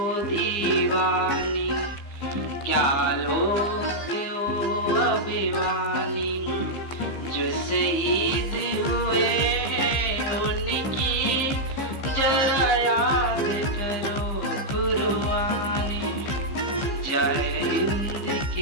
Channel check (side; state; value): right; late; 15 ms